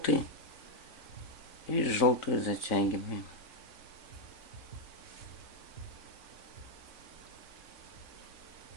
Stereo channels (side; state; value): right; late; 3.5 ms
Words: и желтую затягиваем.